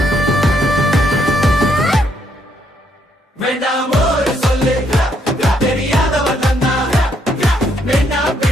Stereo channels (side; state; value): both; normal; correlation 0.73